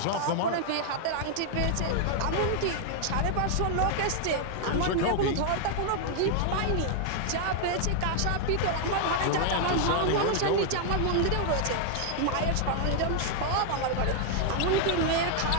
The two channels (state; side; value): different; both; correlation 0.00